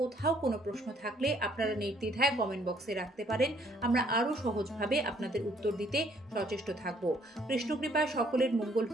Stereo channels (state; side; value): normal; both; correlation 0.64